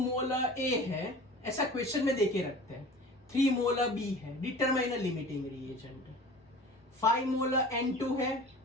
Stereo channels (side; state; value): both; normal; correlation 0.40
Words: मोल A है, ऐसा क्वेश्चन में देके रखते हैं, 3 मोल B है, डिटरमाइन लिमिटिंग रिएजेंट, 5 मोल N2 है,